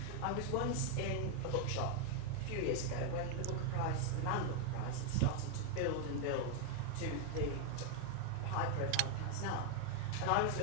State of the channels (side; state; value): both; different; correlation 0.01